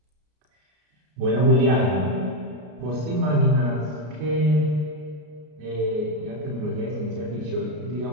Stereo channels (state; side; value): late; left; 33 ms